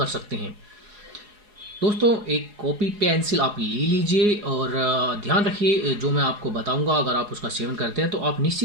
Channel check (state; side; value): late; left; 4.8 ms